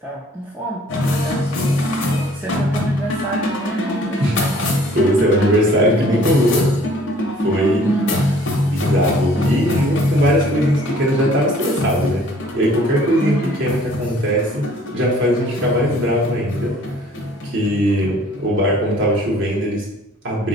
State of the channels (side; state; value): both; normal; correlation 0.55